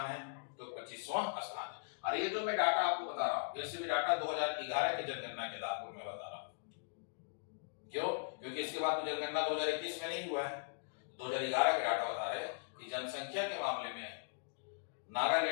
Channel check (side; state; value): right; silent; digital silence